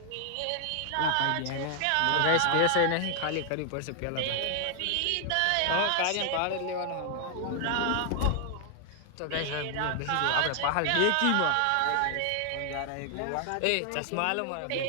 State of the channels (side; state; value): both; different; correlation 0.00